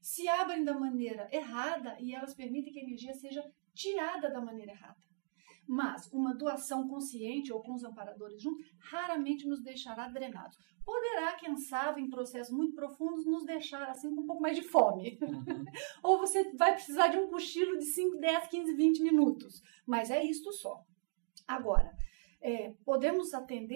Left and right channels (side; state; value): left; silent; digital silence